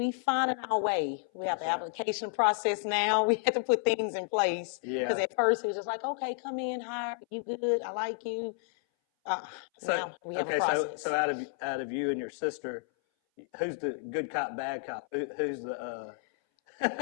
finding our way. We have the application process now. We had to put things in place. Yeah. Because at first it was just like, okay, come in, hire, you good, I like you. Now we have a process. So out of you and your sister, who's the good cop, bad cop? Who's the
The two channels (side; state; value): right; silent; 57 dB below the other